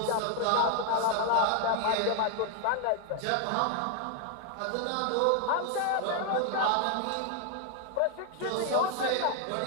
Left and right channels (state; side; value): different; both; correlation 0.00